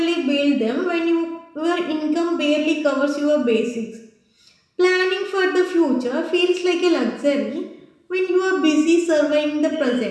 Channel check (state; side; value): identical; both; correlation 1.00